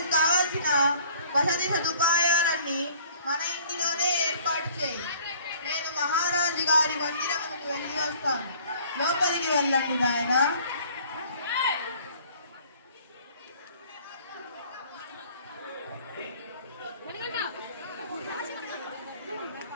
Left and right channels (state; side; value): inverted; both; correlation -0.53